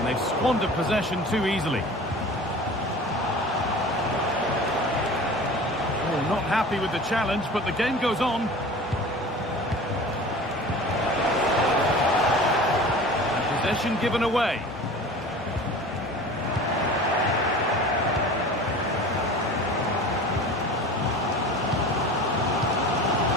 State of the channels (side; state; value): both; normal; correlation 0.39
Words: they've squandered possession too easily. Oh, not happy with the challenge, but the game goes on. And possession given away.